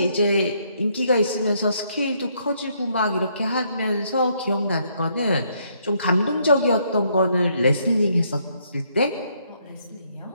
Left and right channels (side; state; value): both; inverted; correlation -0.71